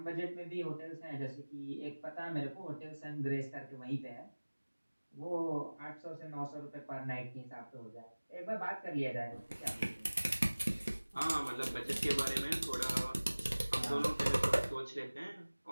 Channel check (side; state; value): both; inverted; correlation -1.00